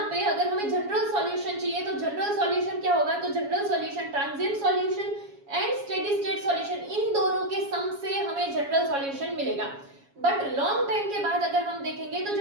पे अगर हमें जनरल सॉल्यूशन चाहिए तो जनरल सॉल्यूशन क्या होगा, तो general solution transient solution and steady state solution, इन दोनों के सम से हमें जनरल सॉल्यूशन मिलेगा। बट लॉन्ग टाइम के बाद अगर हम देखेंगे तो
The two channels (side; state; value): left; late; 7.2 ms